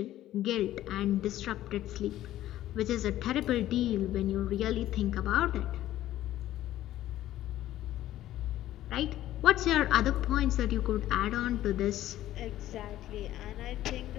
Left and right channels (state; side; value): quieter; right; 13.7 dB